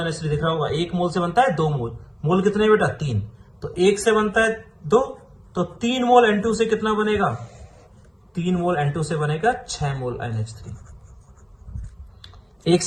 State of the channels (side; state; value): both; identical; correlation 1.00